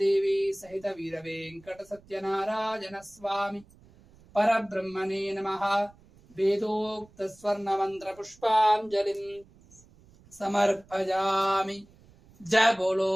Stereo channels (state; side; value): noise; right; rumble, 27 dB below the sound